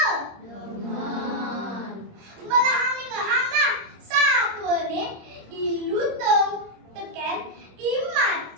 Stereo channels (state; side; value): late; left; 26 ms